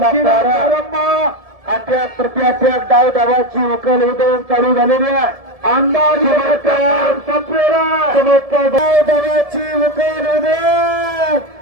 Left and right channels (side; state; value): left; late; 1.7 ms